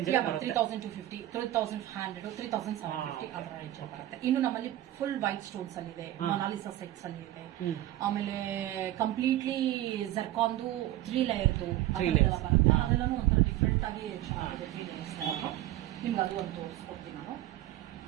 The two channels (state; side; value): quieter; left; 14.5 dB